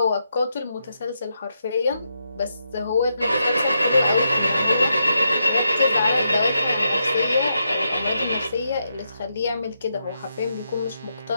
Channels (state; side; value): inverted; both; correlation -0.83